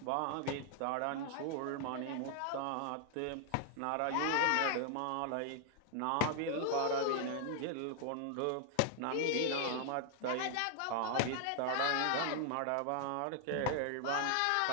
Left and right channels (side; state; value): both; different; correlation 0.00